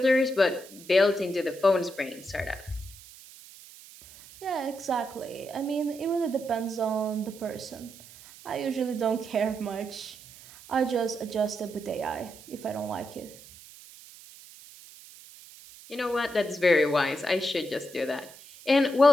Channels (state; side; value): noise; right; hiss, 19 dB below the sound